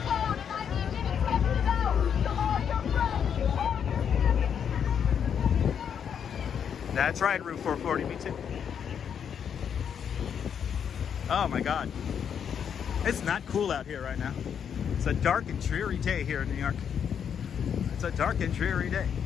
phone and I need you to text it out to all your friends, all your family. That's right, Route 440, me too. Oh my God. It's not cool out here right now. It's a dark and dreary day here in New York. It's a dark and dreary day.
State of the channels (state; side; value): quieter; right; 7.9 dB